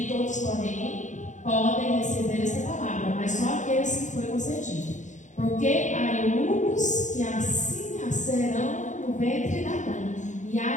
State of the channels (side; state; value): right; late; 0.35 ms